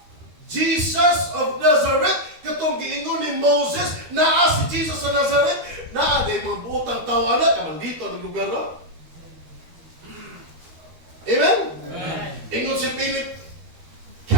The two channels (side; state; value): left; late; 13 ms